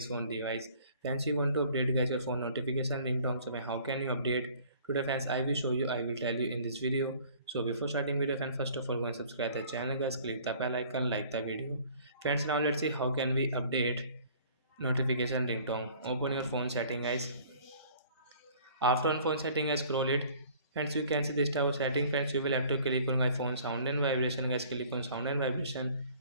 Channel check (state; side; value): inverted; both; correlation -0.52